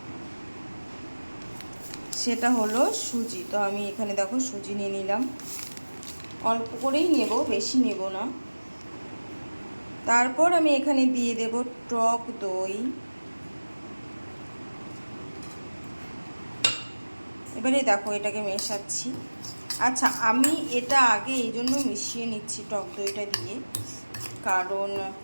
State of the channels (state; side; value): inverted; both; correlation -1.00